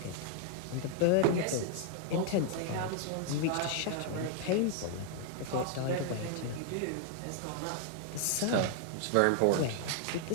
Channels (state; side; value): different; both; correlation 0.00